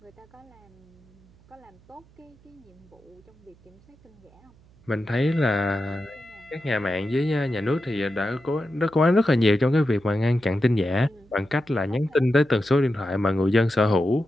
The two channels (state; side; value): noise; right; hum, 28 dB below the sound